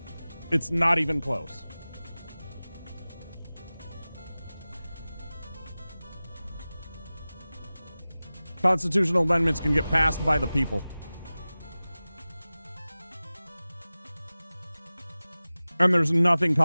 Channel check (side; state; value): both; inverted; correlation -0.97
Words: It's not even close. Constitutional amendments can get passed by the people. And there's nothing